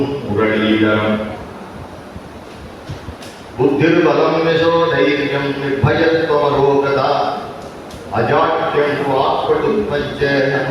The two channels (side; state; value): both; identical; correlation 1.00